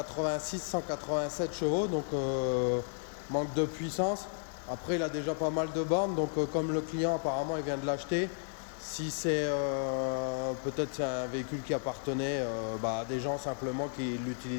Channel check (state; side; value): silent; right; 56 dB below the other